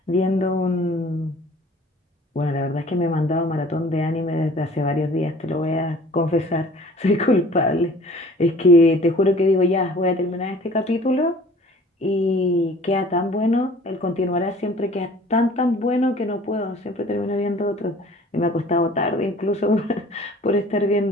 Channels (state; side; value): normal; both; correlation 0.49